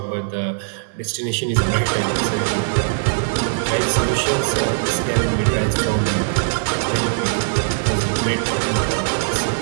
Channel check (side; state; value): left; silent; 66 dB below the other